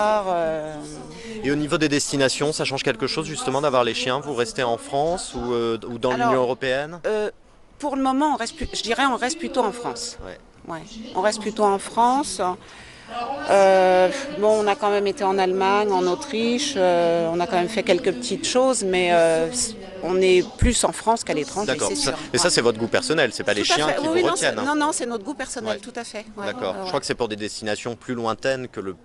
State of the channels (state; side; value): identical; both; correlation 1.00